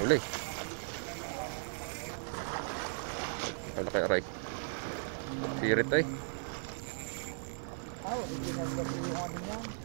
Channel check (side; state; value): left; silent; digital silence